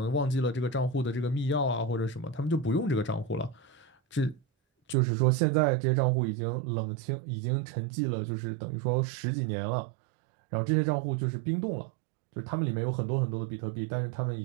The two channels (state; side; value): drops out; left; at 5.0 s